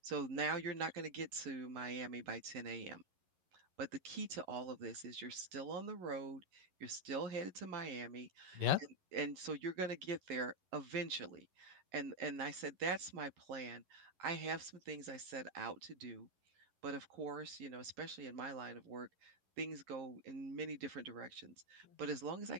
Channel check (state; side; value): late; left; 11 ms